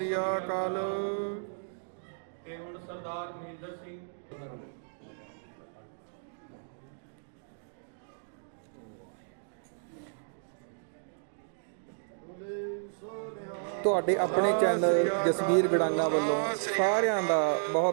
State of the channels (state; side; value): silent; left; digital silence